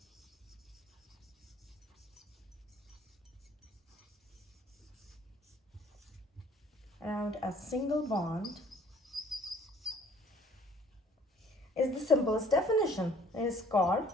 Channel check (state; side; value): normal; both; correlation 0.56